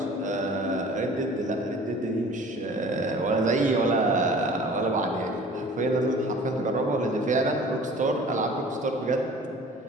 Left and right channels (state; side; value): normal; both; correlation 0.46